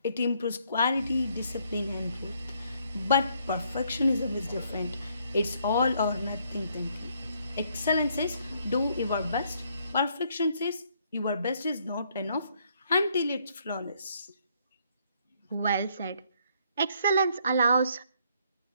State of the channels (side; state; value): both; inverted; correlation -0.69